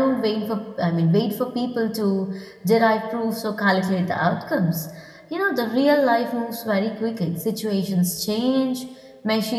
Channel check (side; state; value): both; identical; correlation 1.00